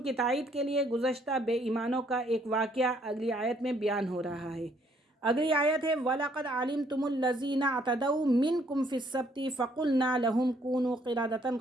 की तायीद के लिए गुज़श्ता बेईमानों का एक वाक़या अगली आयत में बयान हो रहा है। अगली आयत है वलक़द अलिमतुमुल्लज़ीना अतदऊ मिनकुम फ़िस्सब्ति फ़क़ुलना लहुम कूनू क़िरादतन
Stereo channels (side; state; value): both; normal; correlation 0.66